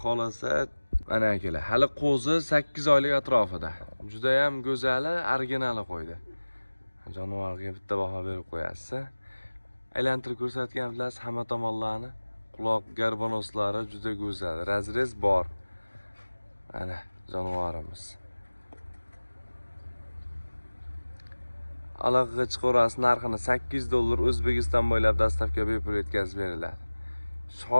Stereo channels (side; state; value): both; inverted; correlation -1.00